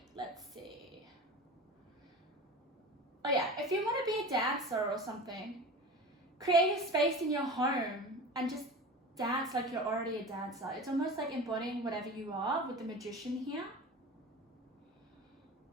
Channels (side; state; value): both; normal; correlation 0.34